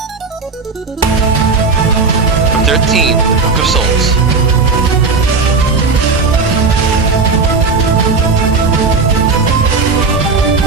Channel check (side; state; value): left; quieter; 4.4 dB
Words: 13, Book of Souls.